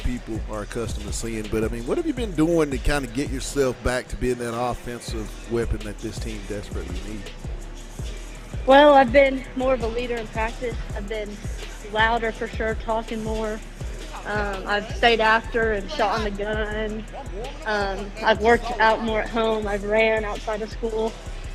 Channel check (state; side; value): identical; both; correlation 1.00